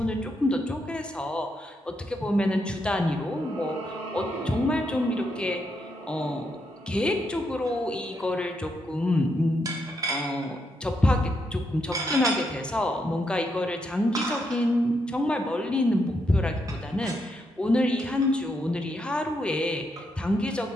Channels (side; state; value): both; normal; correlation 0.80